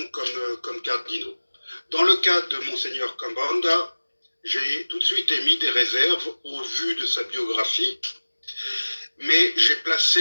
comme cardinaux. Dans le cas de Monseigneur Kambanda, j'ai tout de suite émis des réserves au vu de sa biographie, mais j'ai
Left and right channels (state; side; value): inverted; both; correlation -1.00